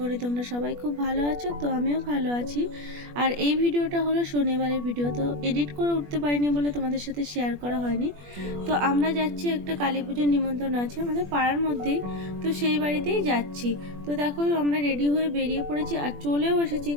তোমরা সবাই খুব ভালো আছো। তো আমিও ভালো আছি। আর এই ভিডিওটা হলো শনিবারের ভিডিও, তো এডিট করে উঠতে পারিনি বলে তোমাদের সাথে শেয়ার করা হয়নি। তো আমরা যাচ্ছি, একটা কালী পুজোর নিমন্ত্রণ আছে আমাদের পাড়ার মধ্যেই, তো সেই বাড়িতেই যাচ্ছি। তো দেখো আমরা রেডি হয়ে বেরিয়ে পড়েছি আর চলেও এসেছি,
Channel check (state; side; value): late; left; 21 ms